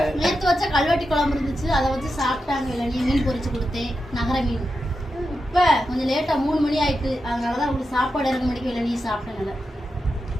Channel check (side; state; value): both; normal; correlation 0.88